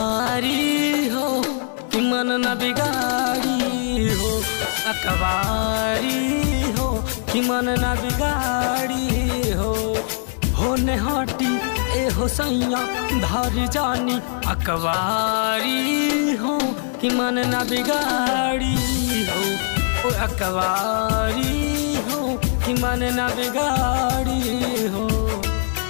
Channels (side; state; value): right; silent; digital silence